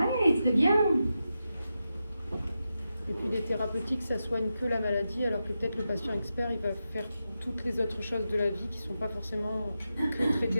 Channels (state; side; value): inverted; both; correlation -0.89